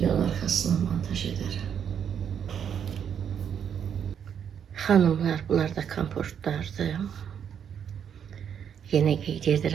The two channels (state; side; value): quieter; left; 8.3 dB